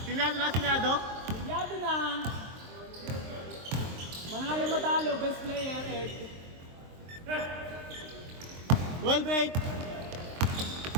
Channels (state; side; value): late; left; 23 ms